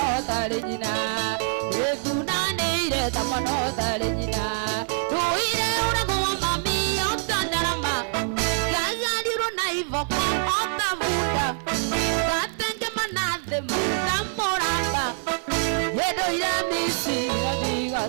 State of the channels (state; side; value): silent; left; 55 dB below the other